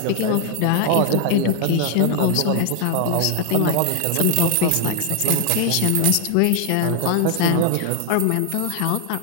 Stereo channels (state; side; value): different; both; correlation 0.00